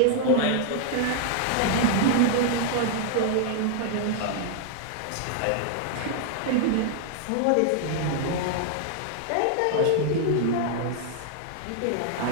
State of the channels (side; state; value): both; different; correlation 0.00